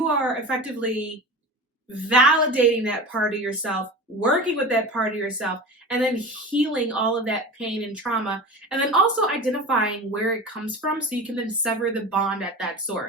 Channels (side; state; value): both; normal; correlation 0.31